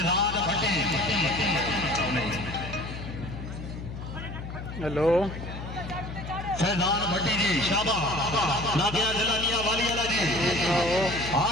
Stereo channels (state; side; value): noise; left; hum, 9 dB below the sound